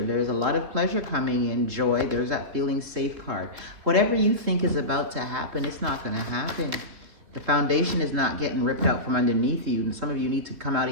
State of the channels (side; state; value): left; late; 3.6 ms